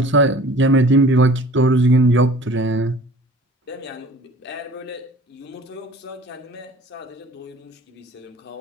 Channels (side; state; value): both; normal; correlation 0.46